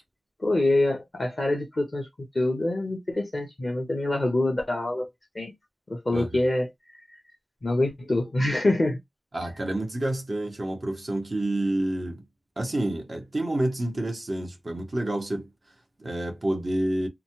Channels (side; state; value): both; normal; correlation 0.96